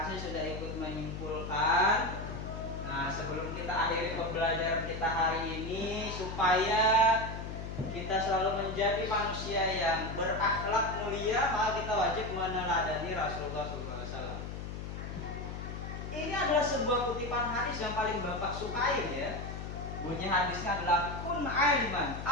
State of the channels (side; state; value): left; noise; hum, 7 dB below the sound